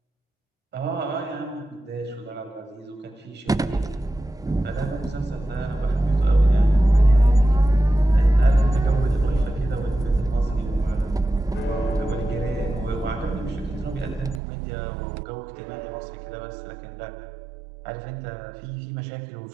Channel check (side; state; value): left; drops out; at 14.4 s